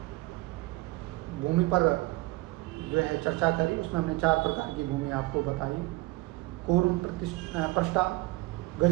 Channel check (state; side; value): quieter; left; 21.1 dB